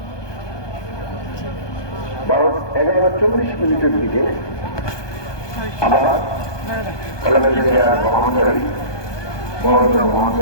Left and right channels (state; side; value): late; right; 1.2 ms